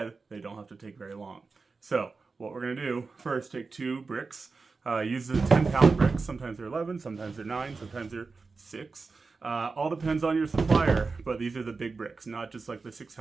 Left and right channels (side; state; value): left; quieter; 4.3 dB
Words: they don't have to take very long. So, what we're going to do, first take 2 bricks. Use the 10-pound bricks. Sometimes they're 11, sometimes they're 9, sometimes they're 6. All depends on your supplier, but these are the big bricks, not just like the